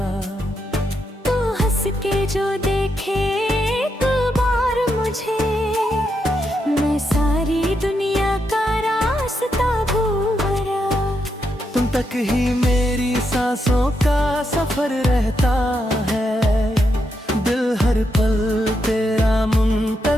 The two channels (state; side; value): normal; both; correlation 0.82